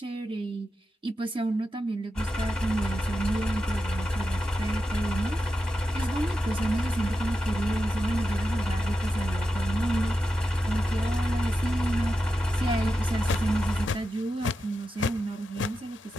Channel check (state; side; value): normal; both; correlation 0.89